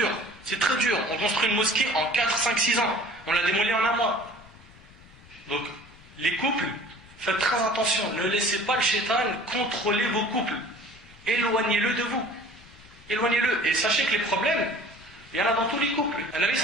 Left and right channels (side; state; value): left; noise; rumble, 23 dB below the sound